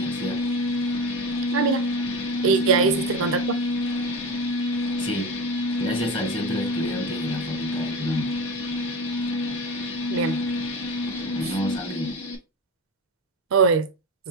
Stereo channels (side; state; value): both; normal; correlation 0.24